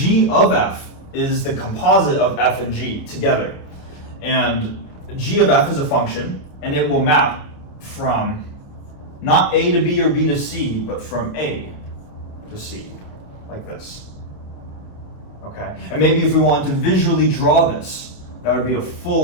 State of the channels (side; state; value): right; late; 28 ms